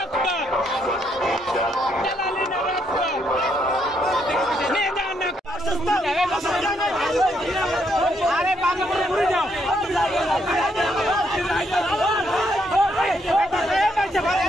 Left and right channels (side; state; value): both; normal; correlation 0.74